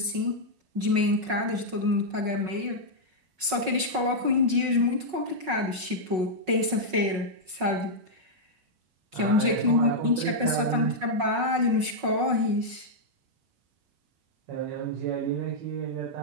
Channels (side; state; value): left; late; 5.4 ms